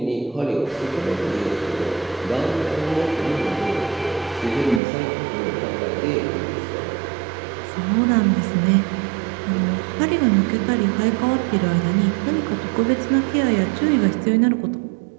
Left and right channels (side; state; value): left; drops out; at 4.8 s